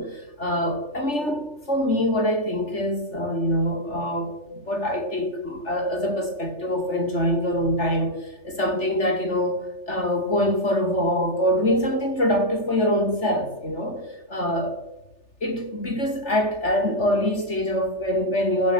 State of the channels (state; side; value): late; right; 3.4 ms